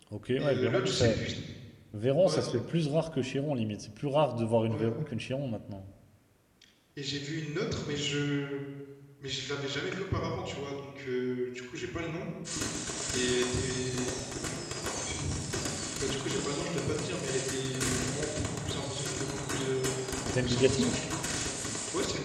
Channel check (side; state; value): both; identical; correlation 1.00